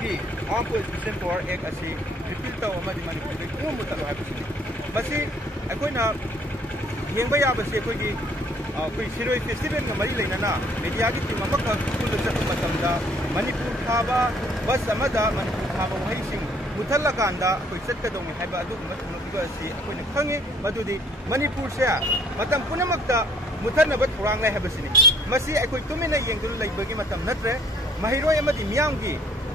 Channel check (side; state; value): both; normal; correlation 0.60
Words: आर्म पुलिस पावर एक्ट असि रिपील तौ अमदी मणिपुर दे कोम मुतलो हाइबा सि बसी अखोइना येंबा याबसे अखोइगी कोई सिरोई फेस्टिवल का मरी लेना मीडिया की टीम अमक स्कूल चप मतमदा मणिपुर थाबा बस अमदा मणिपुर थाबा वही सिंह ꯃꯨꯊꯠꯂꯀꯥꯟꯗ ꯑꯩꯈꯣꯏ ꯆꯠꯀꯗꯧꯅꯤ ꯍꯥꯏꯕ ꯑꯗꯨꯒꯨꯝꯕ ꯊꯧꯔꯝ ꯑꯁꯤ ꯑꯩꯈꯣꯏꯅ ꯈꯪꯉꯤ ꯃꯗꯨꯗꯤ ꯃꯅꯤꯄꯨꯔꯁꯦ ꯃꯇꯝ ꯄꯨꯝꯅꯃꯛꯇ ꯃꯨꯊꯠꯅꯕ ꯊꯧꯔꯥꯡ ꯂꯩ ꯍꯥꯏꯕꯁꯤꯅꯤ ꯃꯁꯤ ꯑꯩꯈꯣꯏ ꯇꯨꯃꯤꯟꯅ ꯌꯦꯡꯗꯨꯅ ꯂꯩꯕꯒꯤ ꯃꯇꯝ ꯅꯠꯇ꯭ꯔꯦ ꯃꯍꯩꯔꯣꯏ ꯑꯃꯗꯤ ꯃꯤꯌꯥꯝꯒꯤ